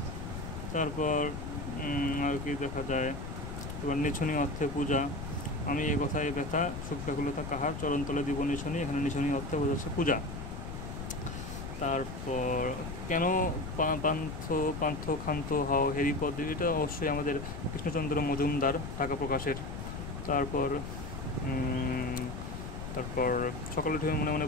তারপর আর কি দেখা যায়, এবার নিছনি অর্থে পূজা, আমি এ কথায় ব্যথা সুখ ব্যাকুলতা কাহার, চরণতলে দিব নিছনি, এখানে নিছনি অর্থে বোঝাচ্ছে পূজা। তারপর কেন পান্থ ক্ষান্ত হও হেরিপদ, এটা অবশ্যই আমাদের কৃষ্ণচন্দ্র মজুমদার, ঢাকা প্রকাশের। তারপর তারপর সকালে উঠে মনে মনে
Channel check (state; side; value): noise; left; rumble, 7 dB below the sound